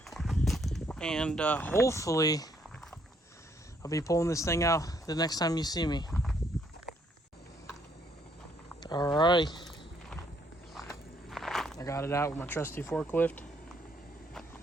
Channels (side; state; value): both; normal; correlation 0.69